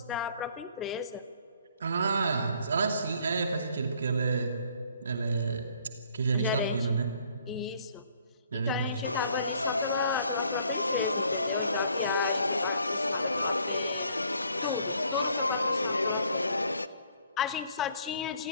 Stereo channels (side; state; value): both; inverted; correlation -0.61